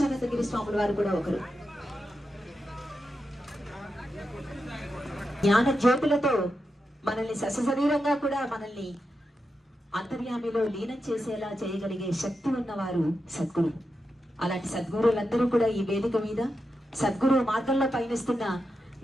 స్వాముల వారు కూడా ఒకరు. జ్ఞాన జ్యోతులతో మనల్ని సశరీరంగా కూడా మనల్ని అంతర్యామిలో లీనం చేసేలా చేయగలిగే శక్తి ఉన్నవారు సద్గురు. అలాంటి సద్గురులందరూ కూడా ఈ వేదిక మీద సద్గురు మార్గంలో పయనిస్తున్న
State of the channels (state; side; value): normal; both; correlation 0.88